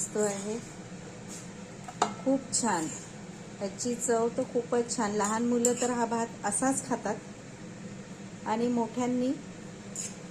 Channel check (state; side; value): identical; both; correlation 1.00